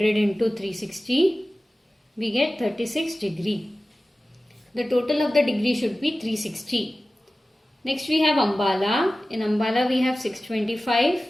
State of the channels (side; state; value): both; normal; correlation 0.96